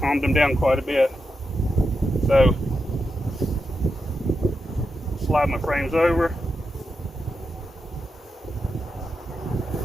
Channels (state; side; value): normal; both; correlation 0.87